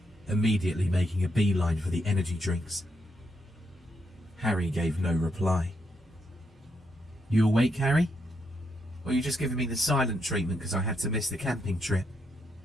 immediately making a beeline for the energy drinks. Harry gave no reply. "You awake, Harry? Or are you just giving me the silent treatment because I had to miss the camping trip?"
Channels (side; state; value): both; normal; correlation 0.79